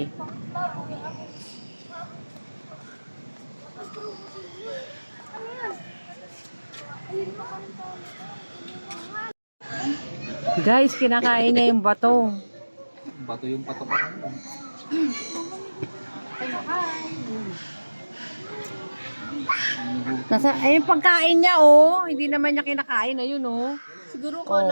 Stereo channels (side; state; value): both; inverted; correlation -1.00